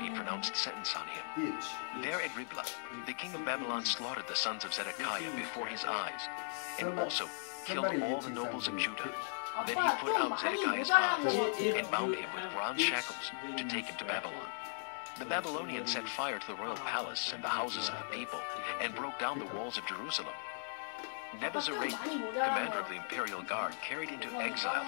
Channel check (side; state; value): right; silent; 53 dB below the other